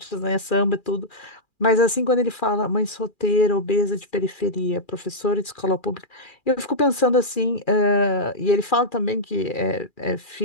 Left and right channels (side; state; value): right; late; 2.4 ms